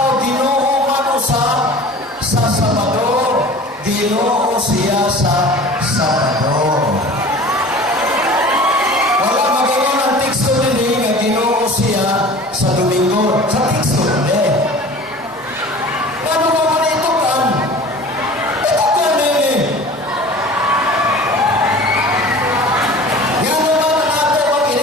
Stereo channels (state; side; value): normal; both; correlation 0.41